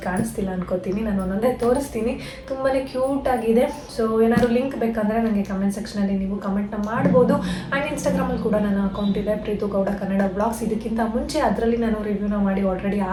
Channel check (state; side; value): identical; both; correlation 1.00